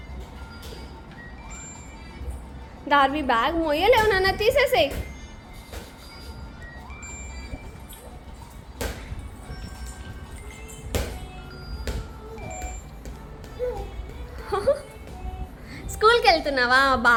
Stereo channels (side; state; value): both; identical; correlation 1.00